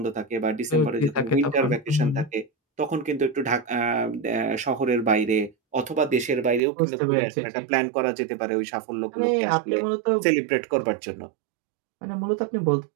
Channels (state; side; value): drops out; left; at 6.6 s